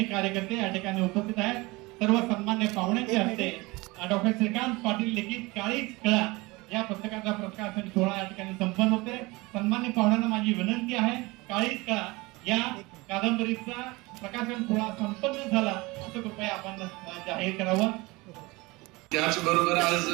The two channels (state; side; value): quieter; left; 23.2 dB